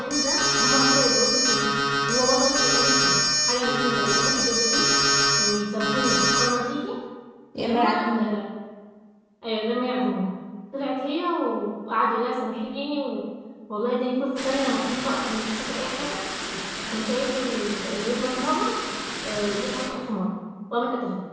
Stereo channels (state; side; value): identical; both; correlation 1.00